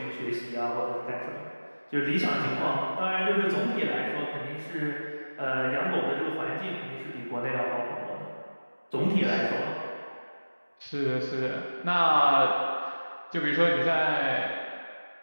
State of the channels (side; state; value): both; inverted; correlation -1.00